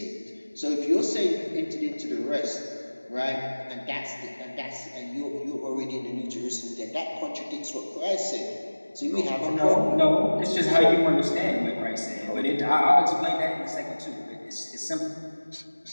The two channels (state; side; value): inverted; both; correlation -1.00